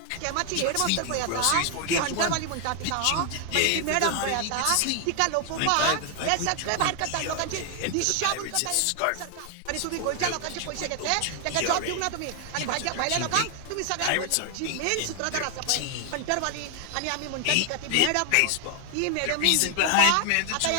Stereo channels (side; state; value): both; different; correlation 0.00